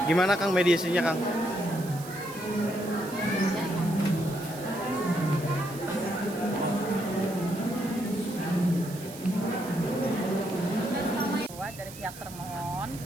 Gimana Kang mediasinya Kang? Dari pihak termohon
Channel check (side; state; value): right; noise; hiss, 15 dB below the sound